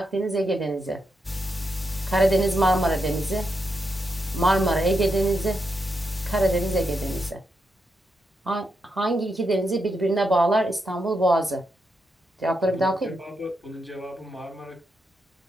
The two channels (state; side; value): normal; both; correlation 0.84